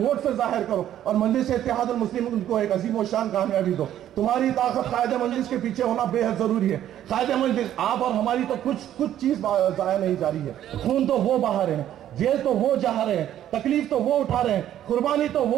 سے ظاہر کرو اور مجلس اتحاد المسلمین کو ایک عظیم و شان کامیابی دو. تمہاری طاقت قائد مجلس کے پیچھے ہونا بے حد ضروری ہے. قائد مجلس آپ اور ہماری تو کچھ چیز ضائع نہیں جا رہی ہے. خون تو وہ بہا رہے ہیں، جیل تو وہ جہا رہے ہیں، تکلیف تو وہ اٹھا رہے ہیں، قربانی تو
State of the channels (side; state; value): left; quieter; 11.5 dB